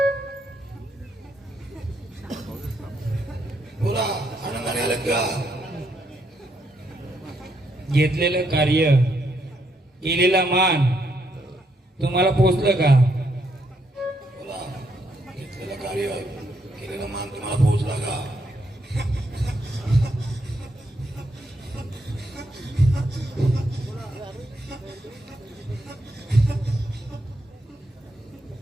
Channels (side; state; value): both; normal; correlation 0.76